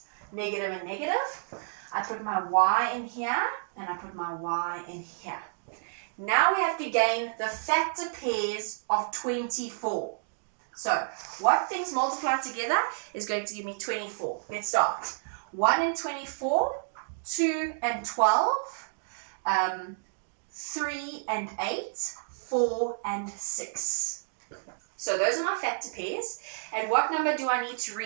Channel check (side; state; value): left; silent; digital silence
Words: Negative and negative. I put my Y in here and I put my Y in here. Now we have to gain the factor pairs of 24. So what things multiply together is going to give me 24. Let's start. 1 and 24, 2 and 12, 3 and 8, 4 and 6. So those are my factor pairs. And what number do I need to